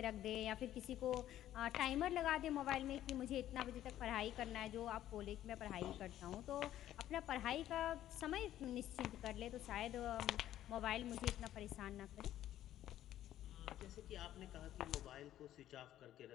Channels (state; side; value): quieter; right; 12.5 dB